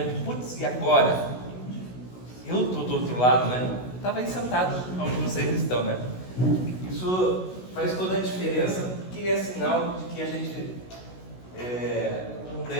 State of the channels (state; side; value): late; right; 16 ms